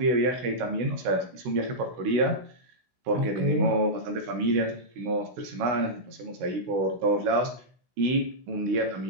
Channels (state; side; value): late; left; 16 ms